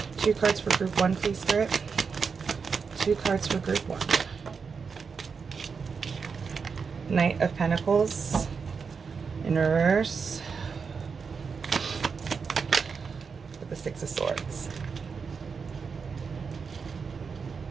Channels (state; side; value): quieter; left; 5.5 dB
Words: 2 cards for group 1, please, Spirit. 2 cards for group 1. Knight of Pentacles in reverse with the 6 of Swords.